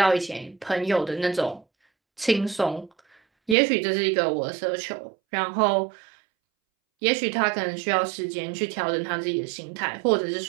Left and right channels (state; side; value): drops out; left; at 3.6 s